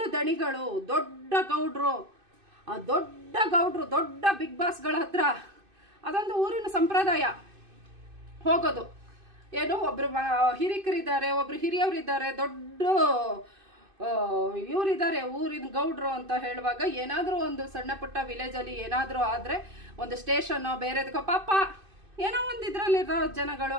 ದಣಿಗಳು, ದೊಡ್ಡ ಗೌಡ್ರು, ಆ ದೊಡ್ಡ ಗೌಡ್ರು, ದೊಡ್ಡ ಬಿಗ್ ಬಾಸ್ಗಳ ಹತ್ರ ಅದೊಂದು ಊರಿನ ಸಂಪ್ರದಾಯ ಹೋಗೋದು. ಏನು ಒಬ್ರು ಹಿರಿಕರಿದ್ದಾರೆ, ಒಬ್ರು ಹಿರಿಯವರಿದ್ದಾರೆ, ದೊಡ್ಡ ಇವರಿದ್ದಾರೆ ಊರಿನ ಗೌಡ್ರು ಅಂತ ಹೇಳುವಾಗ, ಏನಾದರೂ ಒಂದು ಸಣ್ಣ ಪುಟ್ಟ ವಿಲೇಜಲ್ಲಿ ಏನಾದರೂ ಆದರೆ ಒಂದು ಸ್ಟೇಷನ್ನೋ ಬೇರೆದಕ್ಕೋ ಪಾಪ ಏನೋ ಒಂದು ಇದರಲ್ಲಿರೋ ಜನಗಳು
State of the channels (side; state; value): left; late; 2.5 ms